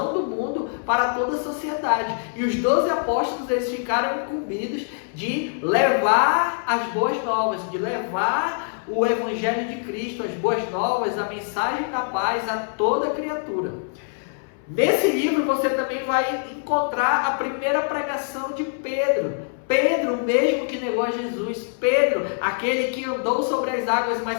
do mundo para toda a sociedade. E os 12 apóstolos, eles ficaram incumbidos de levar as boas novas, de levar o Evangelho de Cristo, as boas novas, a mensagem da paz a toda criatura. Nesse livro você também vai encontrar a primeira pregação de Pedro. Pedro, o mesmo que negou a Jesus. Pedro, aquele que andou sobre as águas,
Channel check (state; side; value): silent; right; 61 dB below the other